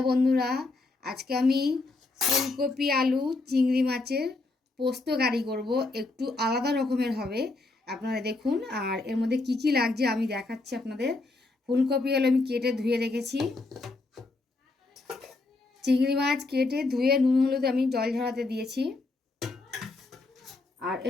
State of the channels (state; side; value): quieter; right; 3.3 dB